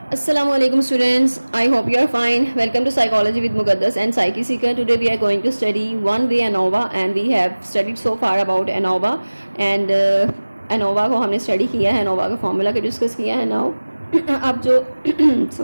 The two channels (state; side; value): inverted; both; correlation -1.00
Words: Assalamu alaikum students. I hope you are fine. Welcome to Psychology with Muqaddas and Psyche Seeker. Today we are going to study one way ANOVA and we have studied so far about ANOVA and ANOVA को हमने study किया है, ANOVA का formula को discuss किया है. Now अब जो